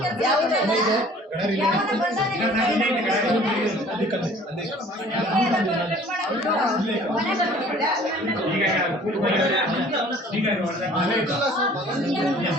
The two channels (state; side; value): normal; both; correlation 0.51